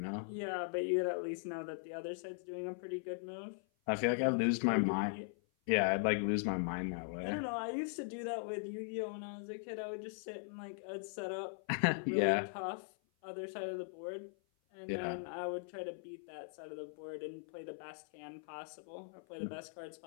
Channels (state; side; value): silent; right; 51 dB below the other